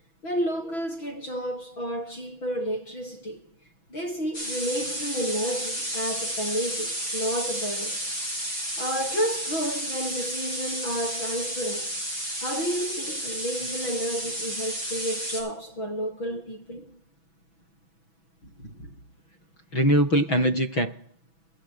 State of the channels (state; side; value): late; right; 6.1 ms